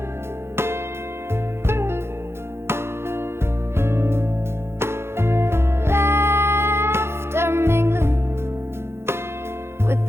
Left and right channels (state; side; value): late; left; 0.12 ms